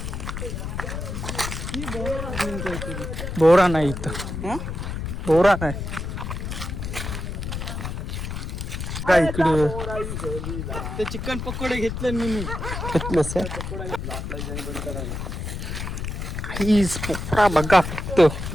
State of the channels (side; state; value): left; noise; rumble, 5 dB below the sound